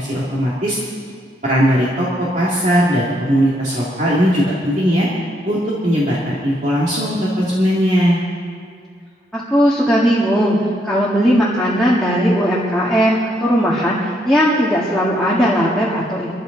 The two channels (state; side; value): normal; both; correlation 0.74